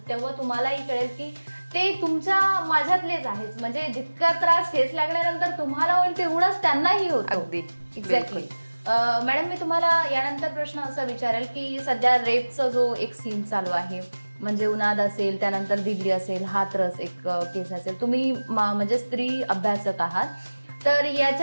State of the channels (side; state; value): both; inverted; correlation -1.00